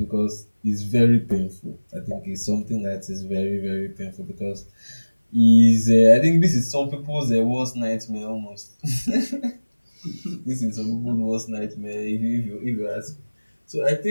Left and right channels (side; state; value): both; inverted; correlation -1.00